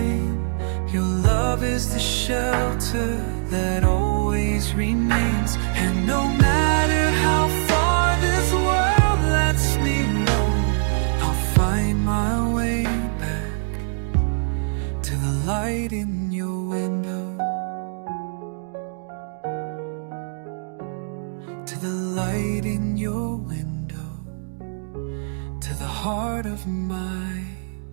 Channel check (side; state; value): left; silent; digital silence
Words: your love is the shelter that always remains. And no matter how far this world lets me know, I'll find my way back to the light in your window, to the light in your window, to the heart of my